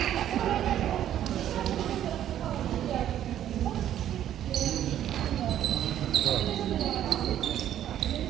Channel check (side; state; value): left; quieter; 11.2 dB